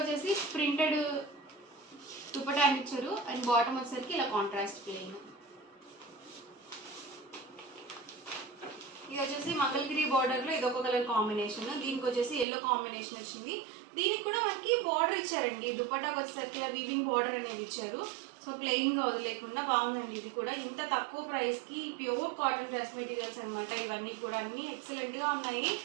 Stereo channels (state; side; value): drops out; left; at 12.5 s